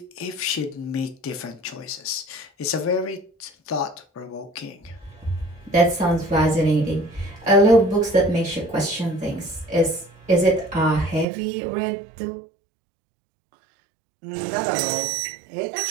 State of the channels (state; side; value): drops out; left; at 11.2 s